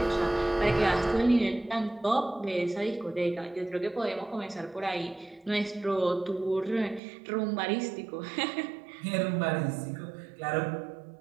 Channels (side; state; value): left; drops out; at 7.0 s